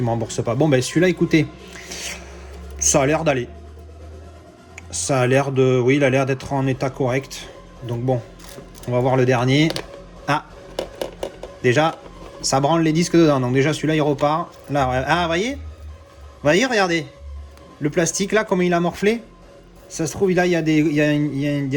ne me remboursent pas. Bon ben celui-là écoutez, ça a l'air d'aller. Ça a l'air de... Oui il a l'air d'être en état correct. Donc bon, on va voir le dernier. Ah, déjà ça branle les disques dedans. Donc déjà celui-là il repart. Là, ah voyez, regardez. Le plastique là comment il a morflé. Ça se trouve là il y a des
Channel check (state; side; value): identical; both; correlation 1.00